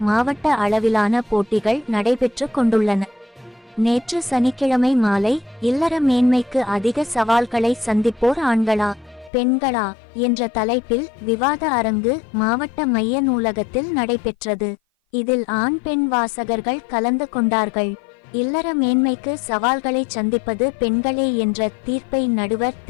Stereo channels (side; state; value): right; drops out; at 9.3 s